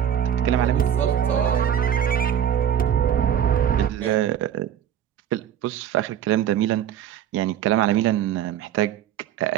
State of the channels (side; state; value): left; quieter; 9.7 dB